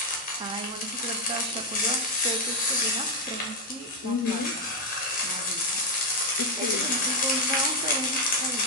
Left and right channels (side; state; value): both; normal; correlation 0.05